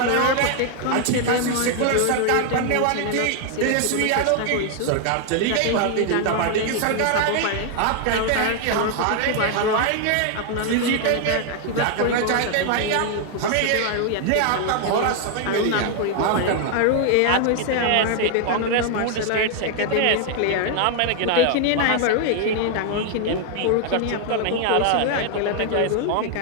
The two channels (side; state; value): both; different; correlation 0.00